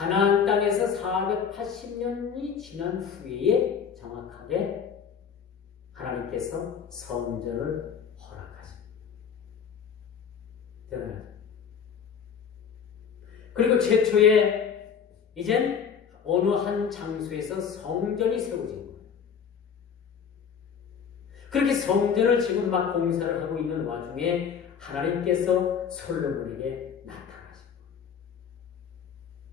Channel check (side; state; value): right; quieter; 7.0 dB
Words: 땅에서 480년이 지난 후에 정확하게 하나님께서 성전을 허락하십니다. 대단하죠. 그리고 최초에 이젠 어느 한 장소에서 성전이 세워진 거예요. 그렇게 성전을 지금 막 공사를 하고 있는 와중에 하나님께서 솔로몬에게 나타나신